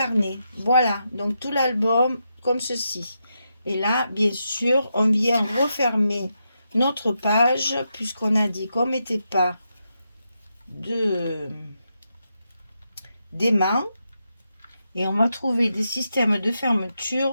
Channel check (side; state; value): both; inverted; correlation -0.84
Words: Voilà, donc tout l'album comme ceci. Et là, bien sûr, on vient refermer notre page puisqu'on a dit qu'on ne mettait pas d'aimants. Et on va trouver des systèmes de